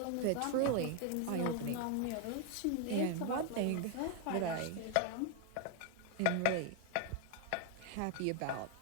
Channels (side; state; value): both; different; correlation 0.00